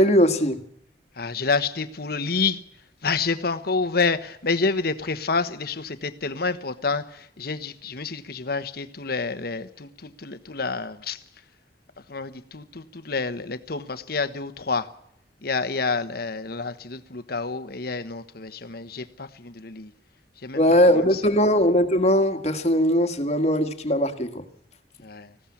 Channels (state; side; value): normal; both; correlation 0.23